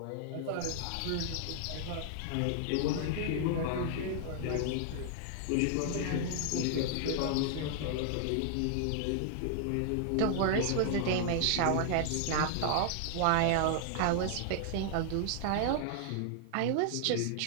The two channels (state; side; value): different; both; correlation -0.01